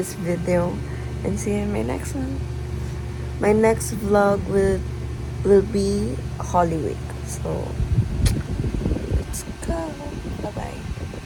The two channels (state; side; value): identical; both; correlation 1.00